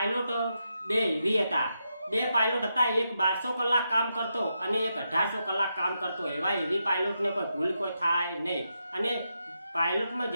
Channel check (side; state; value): both; inverted; correlation -0.84